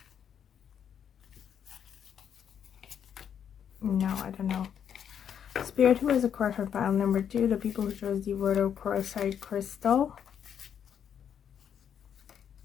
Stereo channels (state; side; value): quieter; right; 8.5 dB